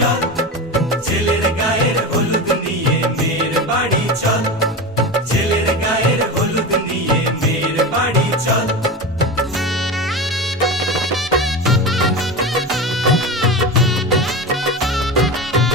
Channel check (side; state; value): both; normal; correlation 0.24